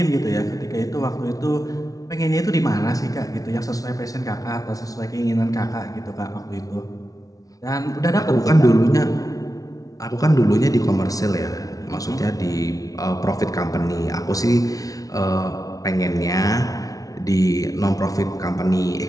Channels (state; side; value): late; right; 0.18 ms